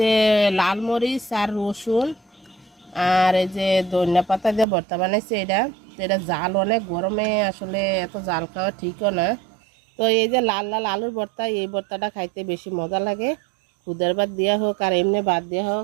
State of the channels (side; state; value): left; drops out; at 4.7 s